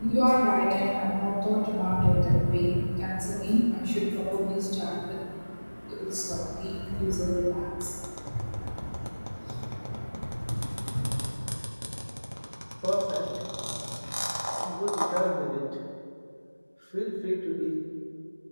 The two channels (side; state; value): both; inverted; correlation -1.00